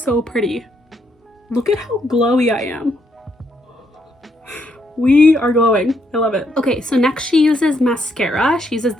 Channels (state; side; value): normal; both; correlation 0.75